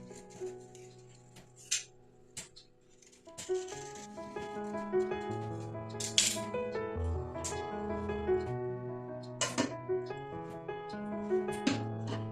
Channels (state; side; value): identical; both; correlation 1.00